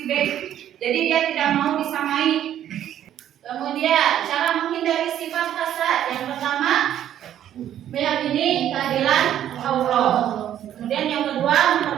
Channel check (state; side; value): quieter; left; 11.0 dB